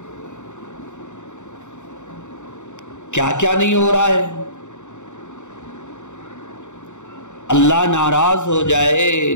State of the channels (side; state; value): right; late; 0.84 ms